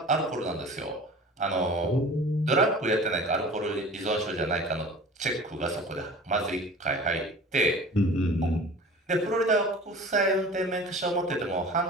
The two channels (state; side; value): normal; both; correlation 0.41